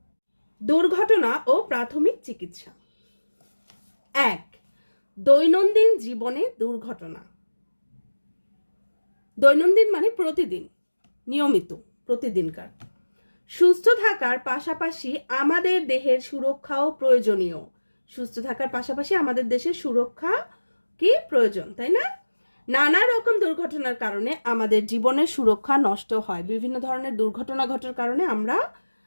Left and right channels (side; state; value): both; inverted; correlation -1.00